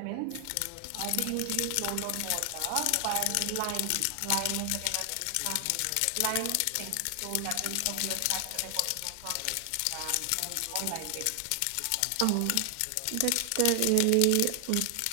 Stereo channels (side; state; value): both; different; correlation 0.00